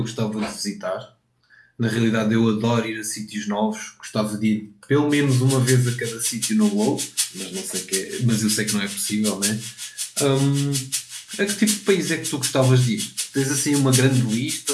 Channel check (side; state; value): both; identical; correlation 1.00